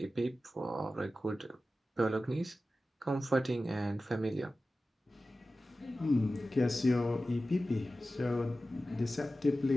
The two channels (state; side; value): normal; both; correlation 0.95